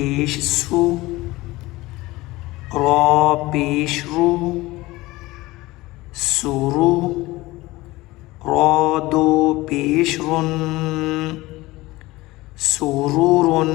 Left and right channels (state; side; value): quieter; right; 19.6 dB